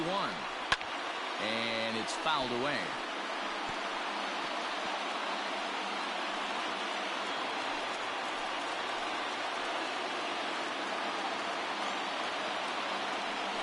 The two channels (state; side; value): identical; both; correlation 1.00